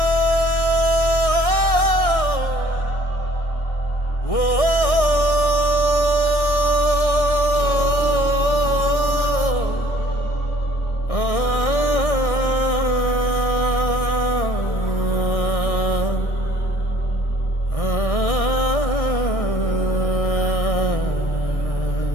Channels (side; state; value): right; late; 1.6 ms